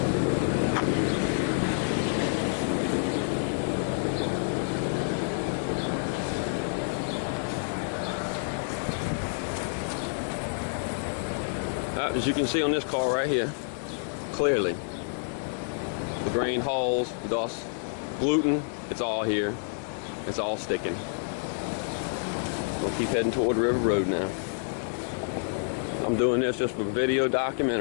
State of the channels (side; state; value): right; silent; digital silence